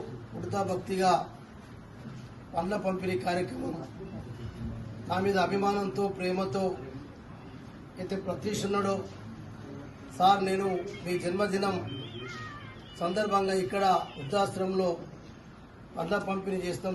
ఉడతా భక్తిగా పండ్ల పంపిణీ కార్యక్రమం నా మీద అభిమానంతో ప్రేమతో అయితే ప్రతీక్షున్నాడో సార్ నేను మీ జన్మదినం సందర్భంగా ఇక్కడ వృద్ధాశ్రమంలో పండ్ల పంపిణీ చేస్తాం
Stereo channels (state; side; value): identical; both; correlation 1.00